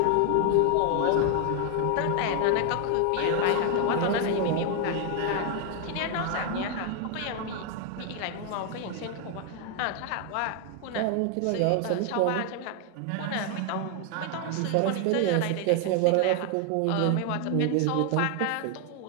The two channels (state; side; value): different; both; correlation 0.01